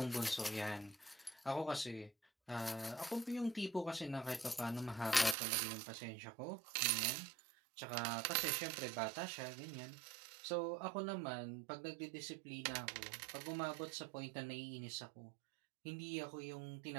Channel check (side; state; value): left; drops out; at 5.4 s